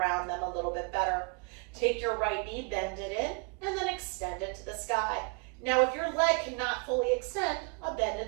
them a little bit better. Take your right knee, bend it in, and then extend it to the sky. Now, if your leg cannot fully extend, a bend in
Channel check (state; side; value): quieter; left; 33.7 dB